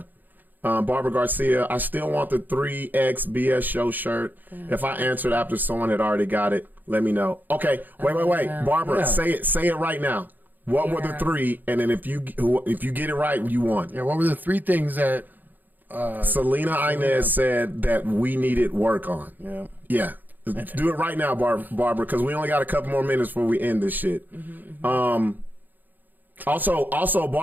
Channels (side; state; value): left; late; 0.086 ms